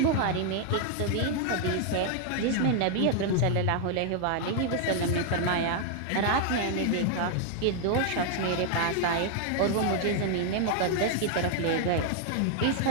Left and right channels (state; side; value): different; both; correlation 0.00